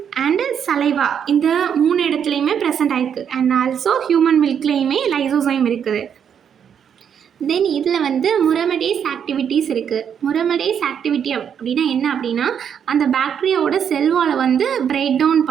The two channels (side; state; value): left; quieter; 8.1 dB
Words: அண்ட் சலைவா இந்த 3 இடத்துலையுமே ப்ரெசென்ட் ஆகிருக்கு. அண்ட் ஆல்சோ ஹியூமன் மில்க்லேயுமே லைசோசைம் இருக்குது. தென் இதில் வந்து முரமடேஸ் ஆக்டிவிட்டீஸ் இருக்குது. முரமடேஸ் ஆக்டிவிட்டி அப்படின்னா என்ன அப்படின்னா அந்த பாக்டீரியாவோட செல்வாலை வந்து பிரேக் டவுன்